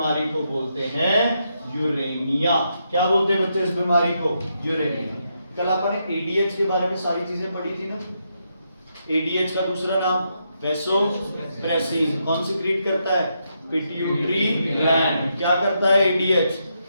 को बोलते हैं यूरेनिया। क्या बोलते हैं बच्चे इस बीमारी को, यूरेनिया। कल अपन ने एडीएच के बारे में सारी चीजें पढ़ी थी ना। एडीएच का दूसरा नाम वैसोप्रेसिन, कौन सिक्रीट करता है, पिट्यूटरी ग्लैंड। क्या करता है एडीएच,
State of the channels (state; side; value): inverted; both; correlation -0.81